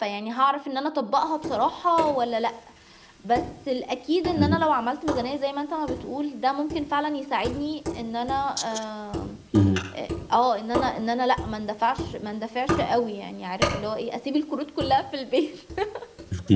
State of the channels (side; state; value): both; identical; correlation 1.00